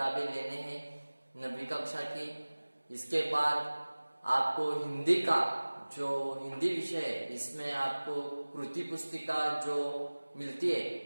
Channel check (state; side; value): inverted; both; correlation -1.00